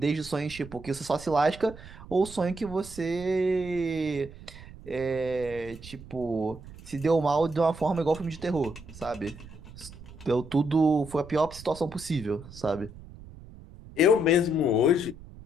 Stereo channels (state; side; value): noise; right; rumble, 17 dB below the sound